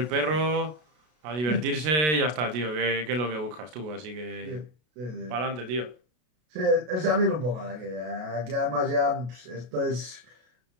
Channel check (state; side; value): late; left; 33 ms